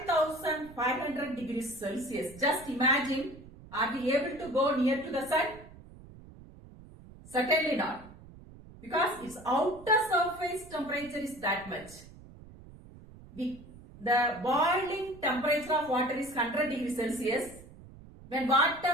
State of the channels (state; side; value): noise; right; rumble, 19 dB below the sound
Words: degrees Celsius. Just imagine, are we able to go near to the sun? Certainly not. Because its outer surface temperature is that much. The boiling temperature of water is 100 degrees Celsius. When